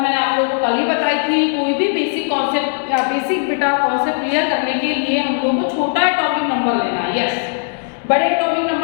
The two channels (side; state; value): right; silent; 61 dB below the other